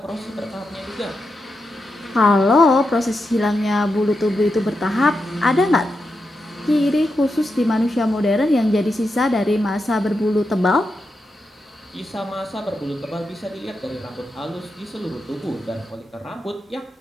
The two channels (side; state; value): both; normal; correlation 0.87